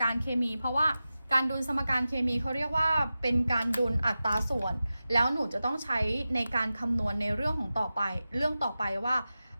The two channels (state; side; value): inverted; both; correlation -0.94